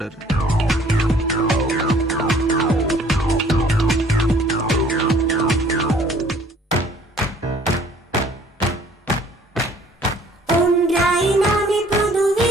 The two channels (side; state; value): both; normal; correlation 0.56